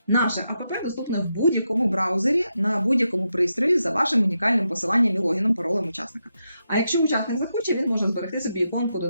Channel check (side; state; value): both; inverted; correlation -0.85